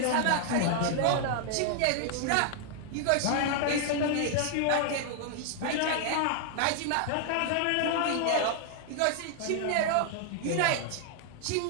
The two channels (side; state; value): both; different; correlation 0.00